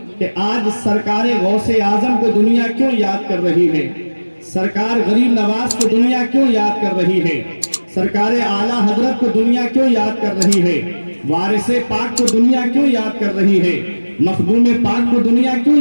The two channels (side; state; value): both; inverted; correlation -1.00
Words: کہ آج سرکار غوث اعظم کو دنیا کیوں یاد کر رہی ہے, سرکار غریب نواز کو دنیا کیوں یاد کر رہی ہے, سرکار اعلیٰ حضرت کو دنیا کیوں یاد کر رہی ہے, وارث پاک کو دنیا کیوں یاد کر رہی ہے, مخدوم پاک کو دنیا کیوں